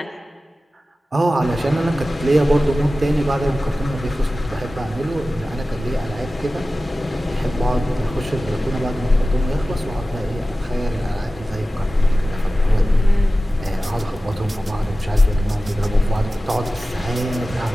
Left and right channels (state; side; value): normal; both; correlation 0.95